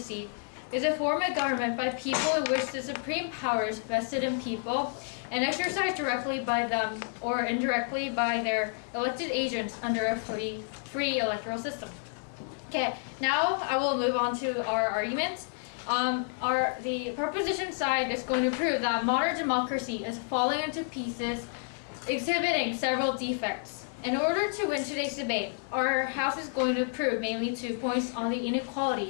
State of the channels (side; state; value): right; silent; 58 dB below the other